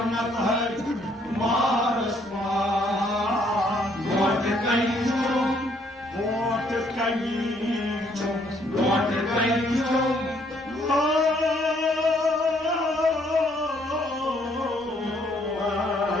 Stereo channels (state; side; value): normal; both; correlation 0.67